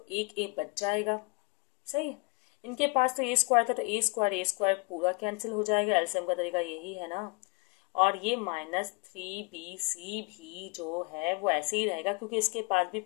एक ए बच जाएगा, सही है। इनके पास तो ए स्क्वायर था, तो ए स्क्वायर पूरा कैंसिल हो जाएगा, एलसीएम का तरीका यही है ना। और ये माइनस 3bc भी जो है वो ऐसे ही रहेगा, क्योंकि इसके पास भी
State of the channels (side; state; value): right; quieter; 28.1 dB